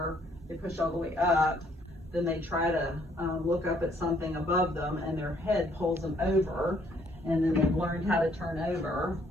they push all the way up, then they try to look up at something above them and their head pulls them over, and then they've learned how to turn over,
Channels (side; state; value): both; normal; correlation 0.65